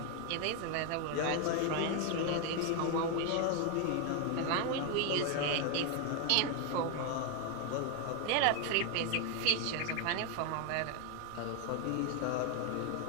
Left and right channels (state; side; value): different; both; correlation 0.01